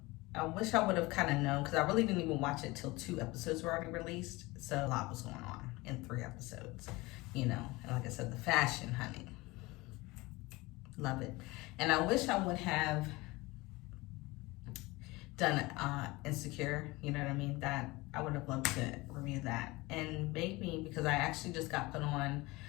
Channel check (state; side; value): quieter; right; 22.1 dB